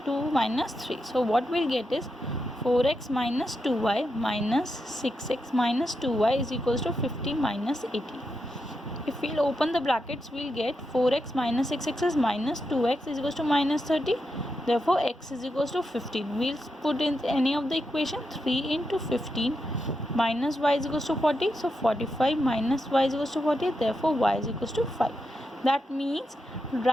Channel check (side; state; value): both; normal; correlation 0.86